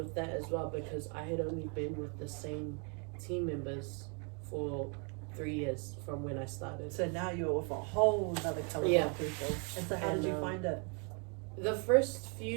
that as well, because I had only been with the same team members for 3 years from when I started. So now you're with a whole other caliber of people. And so how did you find it? The first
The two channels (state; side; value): quieter; left; 37.0 dB